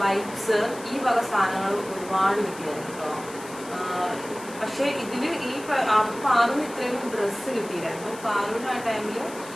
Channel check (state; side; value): noise; left; hiss, 16 dB below the sound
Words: വൈപ്സ്, ഈ വക സാധനങ്ങൾ ഒരുപാട് കിട്ടിയായിരുന്നു കേട്ടോ. പക്ഷേ ഇതിൽ ഈ പാറുവിന് ഇത്രയും ഡ്രസ്സ് കിട്ടിയില്ലായിരുന്നു. പാറുവിന് ആ ടൈമിൽ